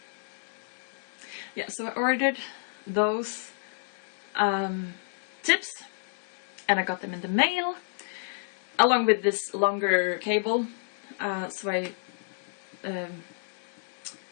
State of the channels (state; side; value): silent; right; digital silence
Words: Yeah, so I ordered those tips and I got them in the mail along with this longer cable. So I